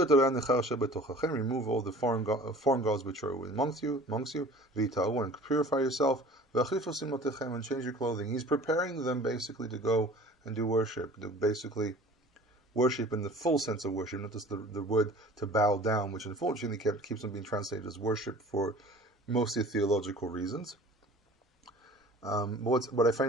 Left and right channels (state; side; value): normal; both; correlation 0.45